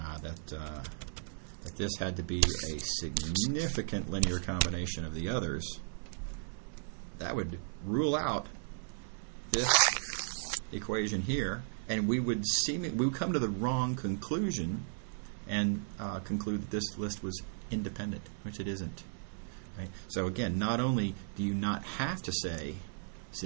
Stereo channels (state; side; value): silent; left; 54 dB below the other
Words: this had to be a significant linear combination of the others, that would rule out this equation here, and we would come to the wrong conclusion and conclude that this list was independent, which it isn't. Right? So again, not only do you not have to say